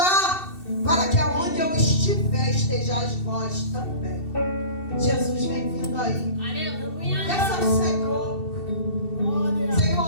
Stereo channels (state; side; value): late; right; 2.7 ms